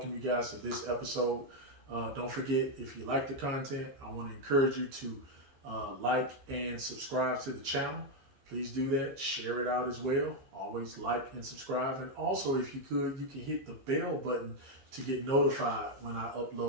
you guys to this episode. Don't forget, if you like the content, I want to encourage you to like and subscribe to the channel. Please do that. Share it out as well. Always like and subscribe. And also, if you could, you can hit the bell button to get notified when I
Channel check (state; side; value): late; left; 15 ms